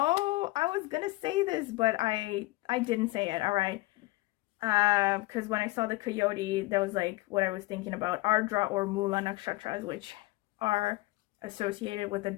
I was gonna say this, but I didn't say it. All right. Because when I saw the coyote, that was like what I was thinking about. Ardra or Mula nakshatras, which are associated with the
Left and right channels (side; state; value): right; quieter; 20.8 dB